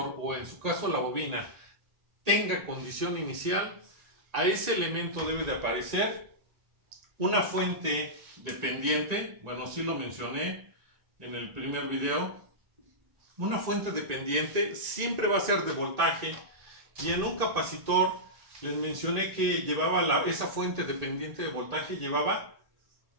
o en su caso la bobina, tenga condición inicial, a ese elemento debe de aparecer una fuente dependiente. Bueno, sí lo mencioné en el primer video. Una fuente dependiente siempre va a ser de voltaje, y en un capacitor les mencioné que llevaba esa fuente dependiente de voltaje llevaba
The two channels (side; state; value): left; late; 1.9 ms